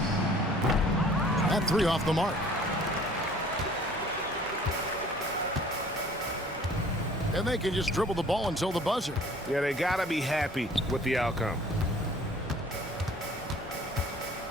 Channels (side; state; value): both; normal; correlation 0.52